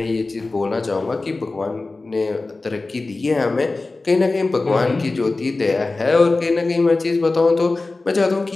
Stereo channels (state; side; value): quieter; right; 3.4 dB